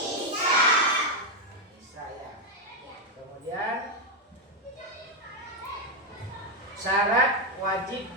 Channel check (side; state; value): both; normal; correlation 0.03